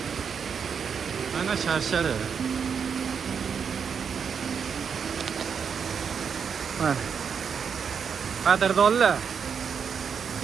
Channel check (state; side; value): quieter; left; 6.7 dB